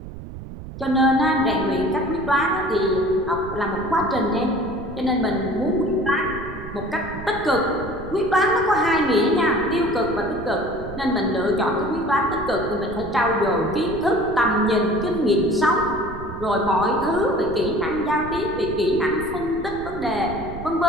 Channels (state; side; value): noise; right; rumble, 12 dB below the sound